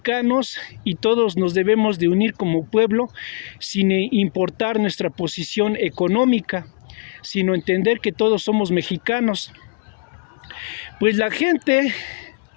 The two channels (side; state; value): right; quieter; 34.0 dB